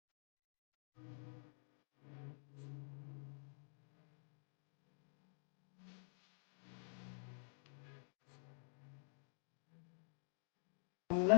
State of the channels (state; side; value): silent; right; digital silence